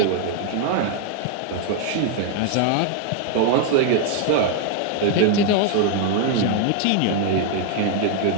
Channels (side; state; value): both; different; correlation 0.00